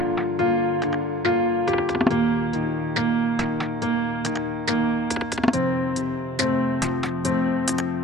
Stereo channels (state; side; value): normal; both; correlation 0.49